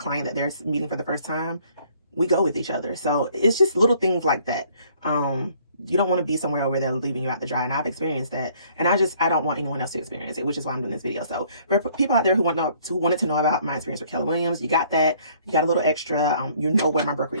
that they're meeting for the first time, we go with each other. So it's just little things like that. You don't want to be somewhere where they're leaving you out to dry. And I've experienced that. And I don't want anyone else to experience it, which is why I'm doing this video. So for people out there who wanted to know about my experience with Keller Williams, you got that. You got a little extra. You know where my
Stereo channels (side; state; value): both; inverted; correlation -0.60